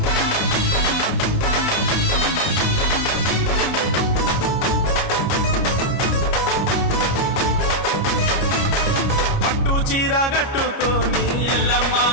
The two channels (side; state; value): right; late; 29 ms